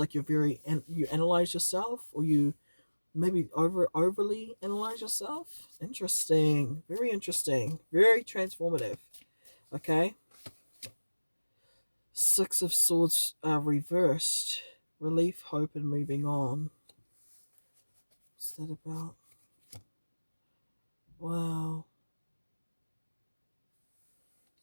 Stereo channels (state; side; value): inverted; both; correlation -1.00